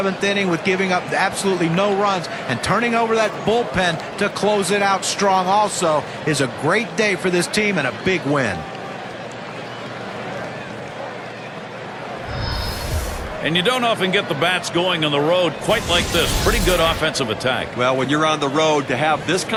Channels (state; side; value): identical; both; correlation 1.00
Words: inning with giving up absolutely no runs and turning over that bullpen to close it out strong also is a great day for this team and a big win. And you don't often get the bats going on the road quite like this. Pretty good offensive attack. Well, when you're on the road, to have this